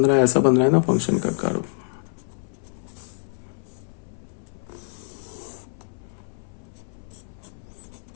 है? ऐसा बन रहा है ना फंक्शन का कर्व।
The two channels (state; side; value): silent; right; 60 dB below the other